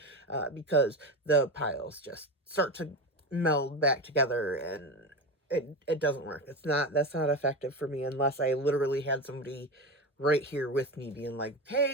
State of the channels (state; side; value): normal; both; correlation 0.21